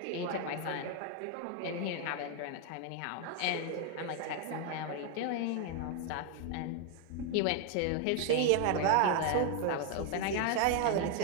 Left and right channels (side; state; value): both; different; correlation 0.00